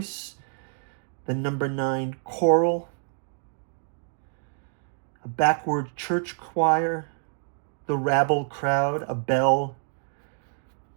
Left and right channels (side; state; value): left; silent; 60 dB below the other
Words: the number 9 choral, a backward church choir, the rabble crowd, a bell,